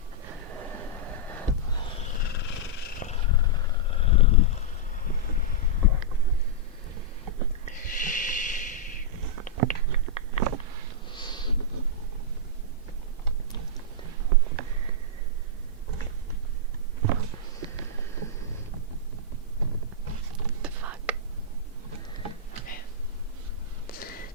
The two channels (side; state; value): both; normal; correlation -0.10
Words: The fuck? Okay.